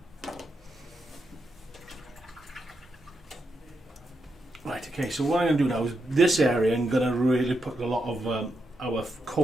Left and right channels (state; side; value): normal; both; correlation 0.84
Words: Right, okay, so what I'm going to do now is this area I'm going to really put a lot of our